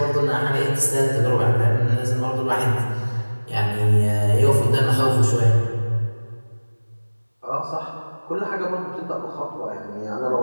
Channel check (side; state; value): both; inverted; correlation -1.00